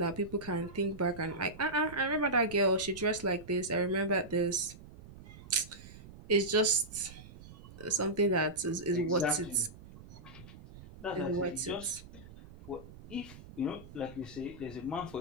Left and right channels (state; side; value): noise; right; rumble, 17 dB below the sound